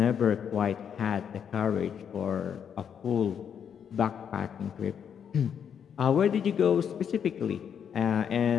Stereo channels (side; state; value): right; quieter; 7.9 dB